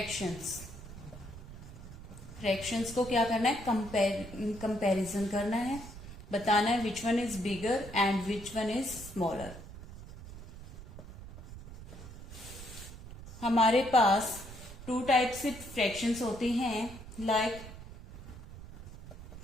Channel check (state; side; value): noise; right; rumble, 14 dB below the sound